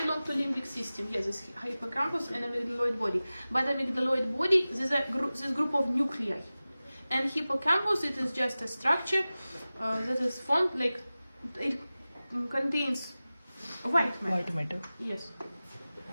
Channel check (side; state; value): both; inverted; correlation -0.97